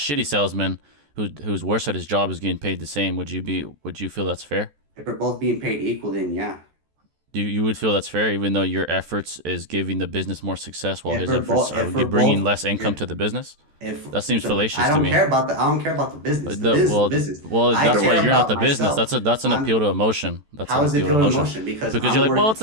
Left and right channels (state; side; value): late; left; 14 ms